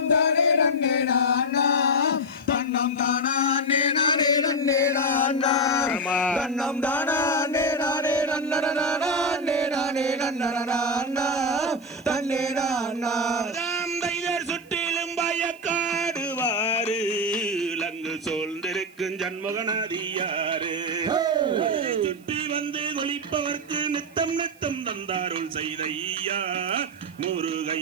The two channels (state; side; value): noise; right; hiss, 29 dB below the sound